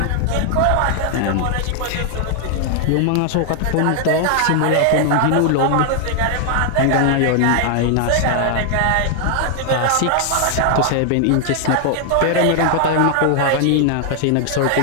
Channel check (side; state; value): both; different; correlation 0.00